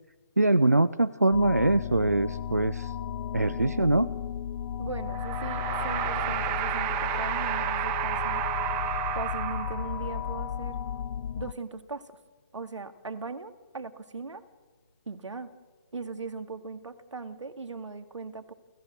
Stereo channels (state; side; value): inverted; both; correlation -0.64